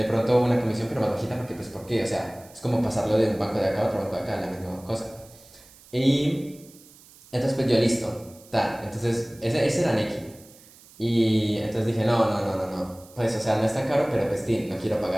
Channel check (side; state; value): right; noise; hiss, 24 dB below the sound